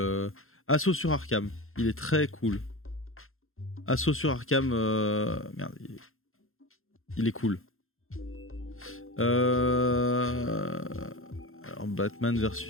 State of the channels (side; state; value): right; late; 0.61 ms